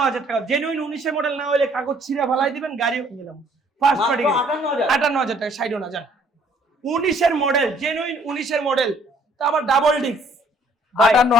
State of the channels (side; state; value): both; normal; correlation 0.61